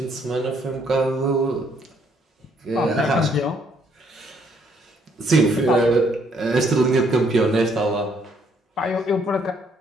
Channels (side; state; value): both; normal; correlation 0.68